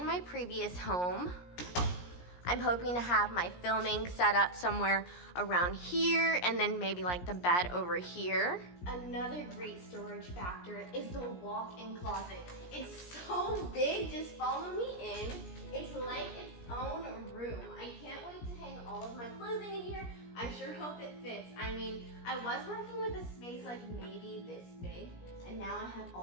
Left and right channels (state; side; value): late; right; 17 ms